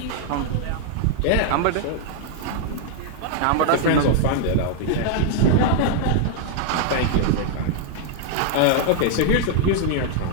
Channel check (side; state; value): both; different; correlation 0.00